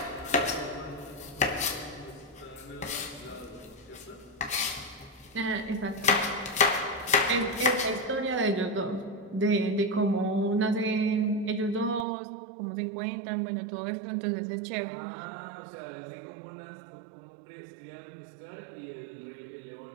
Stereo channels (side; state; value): left; drops out; at 12.1 s